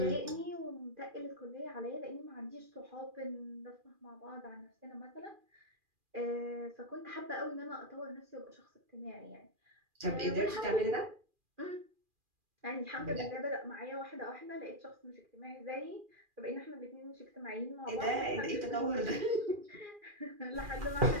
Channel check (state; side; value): late; left; 2.4 ms